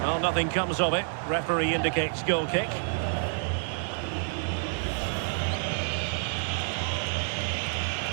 Well, nothing comes of it. Referee indicates goal kick.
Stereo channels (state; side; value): silent; left; digital silence